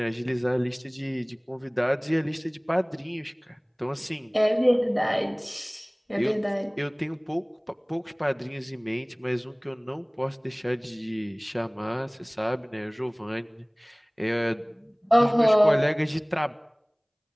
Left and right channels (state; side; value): identical; both; correlation 1.00